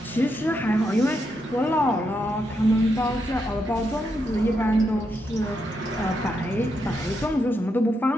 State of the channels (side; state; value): both; normal; correlation 0.81